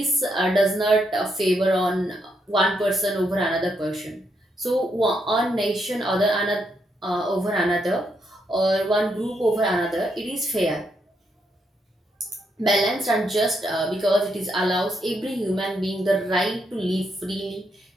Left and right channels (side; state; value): both; normal; correlation 0.78